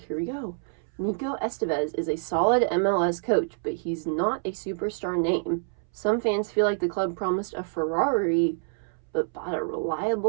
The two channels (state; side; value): silent; left; 60 dB below the other